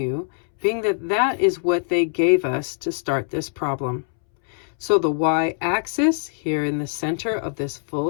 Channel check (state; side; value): silent; right; 64 dB below the other